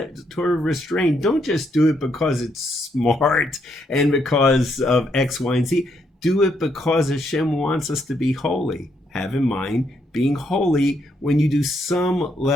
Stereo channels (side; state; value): both; normal; correlation 0.75